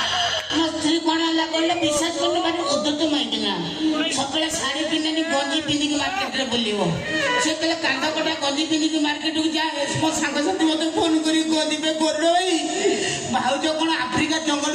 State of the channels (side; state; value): both; identical; correlation 1.00